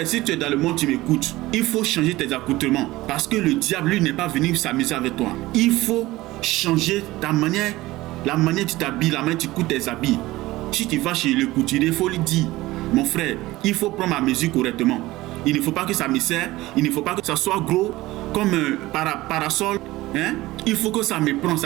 si tu es dans le monde, tu m'écoutes. Il faut changer tes accoutrements. Parce que le diable, lui, n'est pas venu s'amuser avec toi. Il faut changer ta manière, la manière dont tu t'habilles, la manière dont tu coutes tes habits. Si tu vas chez le couturier, il faut lui dire, mon frère, il faut prendre ma mesure correctement. Il ne faut pas que ça me serre, il ne faut pas que ça soit gros comme un parasol. Il faut que ça me prenne,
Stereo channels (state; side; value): quieter; left; 18.3 dB